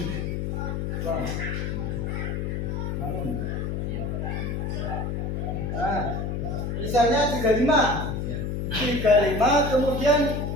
nah, misalnya 35 kemudian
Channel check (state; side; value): noise; left; hum, 2 dB below the sound